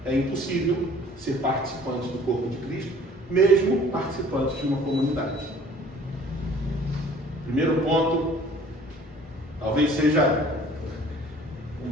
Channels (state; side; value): normal; both; correlation 0.52